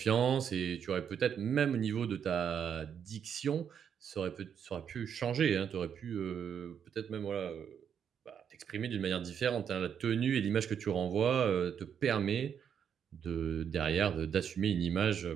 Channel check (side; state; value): left; quieter; 8.0 dB